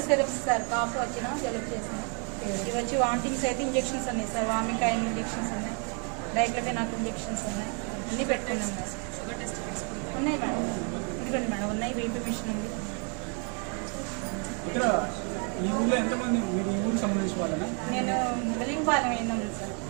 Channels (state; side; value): quieter; left; 37.9 dB